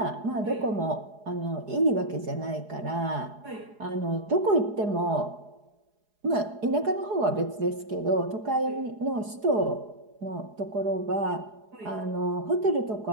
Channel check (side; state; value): left; late; 4.8 ms